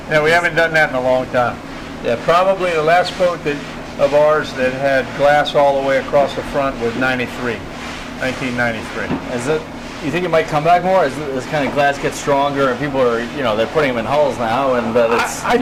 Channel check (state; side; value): identical; both; correlation 1.00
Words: No, we haven't done that in a long time. Yeah, probably the last boat of ours that had glass all the way across the front was 1993. Is it? You think it might come back more as this kind of glass gets stronger and people are, they're putting them in hulls now, and that it's I